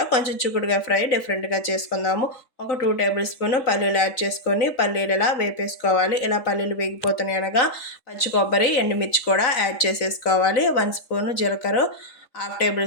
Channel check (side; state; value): right; late; 4.0 ms